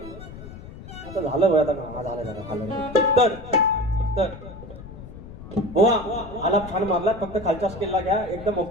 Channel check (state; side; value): noise; left; rumble, 14 dB below the sound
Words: आता झालं आता का झालं. तर बुवा आलाप छान मारला. फक्त खालच्या स्केलला घ्या एकदम